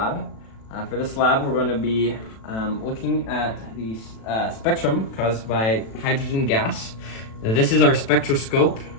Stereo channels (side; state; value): right; late; 36 ms